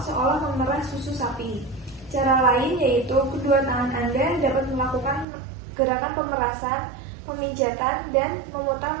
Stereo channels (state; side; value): drops out; left; at 5.2 s